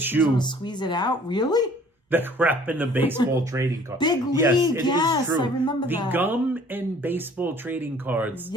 on Chew. and squeeze it out. Really? The crap in the baseball trading card. Big Yes, League, it is yes, true. I remember the that. gum and baseball trading cards.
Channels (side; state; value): both; normal; correlation 0.53